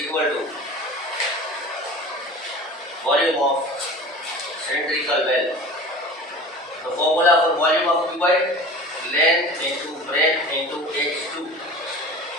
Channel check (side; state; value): both; normal; correlation 0.38